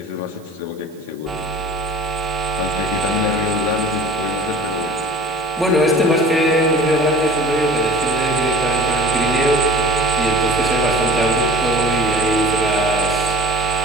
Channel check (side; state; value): right; noise; hiss, 29 dB below the sound